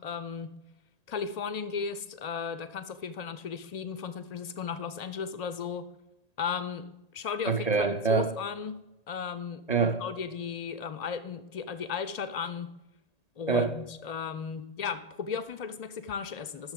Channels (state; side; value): late; right; 1.8 ms